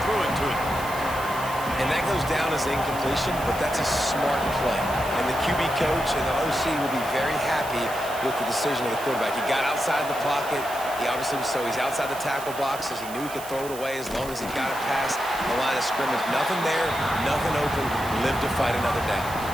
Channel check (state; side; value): noise; right; hiss, 14 dB below the sound